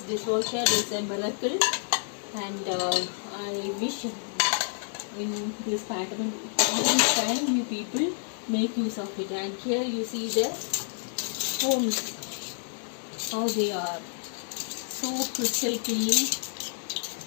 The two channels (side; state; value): right; silent; digital silence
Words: dishwasher is a miracle, and I wish in this pattern all this time you people make use of it. And here you see the homes, how they are so crystal clean.